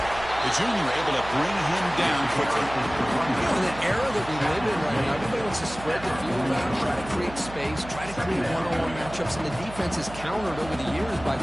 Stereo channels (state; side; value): noise; right; hum, 14 dB below the sound